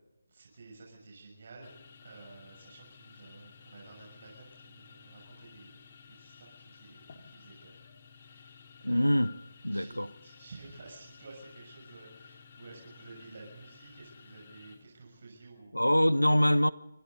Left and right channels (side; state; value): both; inverted; correlation -0.99